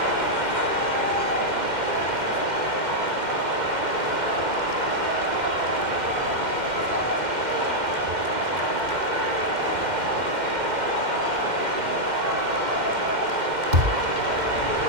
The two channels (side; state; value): left; late; 2.1 ms